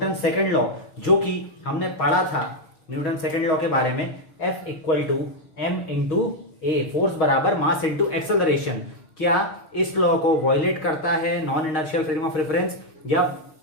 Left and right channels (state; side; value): late; right; 6.3 ms